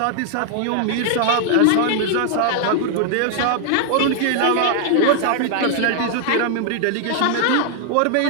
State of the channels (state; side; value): different; both; correlation 0.00